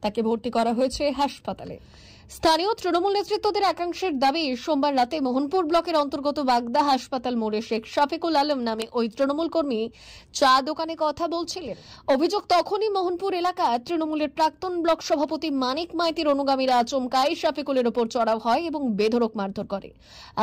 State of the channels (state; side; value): identical; both; correlation 1.00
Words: তাকে ভর্তি করা হয়েছে হাসপাতালে। স্থানীয় তৃণমূল নেতৃত্বদের একাংশের দাবি, সোমবার রাতে মোহনপুর ব্লকের অন্তর্গত বাগদা হাসপাতাল মোড়ে শেখ শফিকুল আলম নামে ওই তৃণমূল কর্মী চা দোকানে কথা বলছিলেন। অভিযোগ, তখনই মোহনপুর এলাকা তৃণমূলের প্রাক্তন ব্লক সভাপতি মানিক মাইতির অনুগামীরা আচমকাই শফিকুলের ওপর চড়াও হয় এবং বেধড়ক মারধর করে।